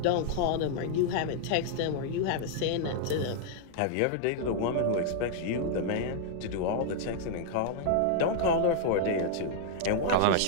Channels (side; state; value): both; different; correlation -0.01